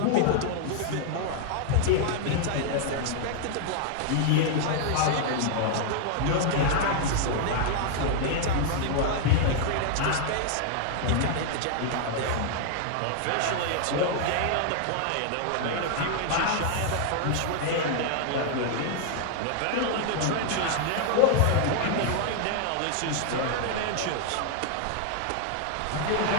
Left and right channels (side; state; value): both; different; correlation 0.00